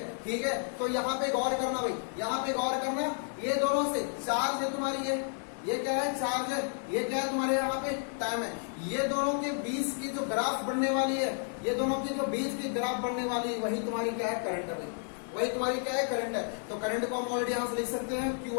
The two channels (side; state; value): right; silent; 56 dB below the other